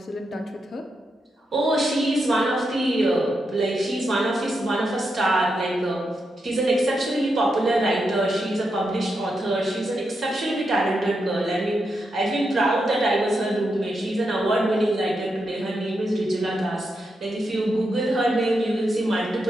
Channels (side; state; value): both; normal; correlation 0.85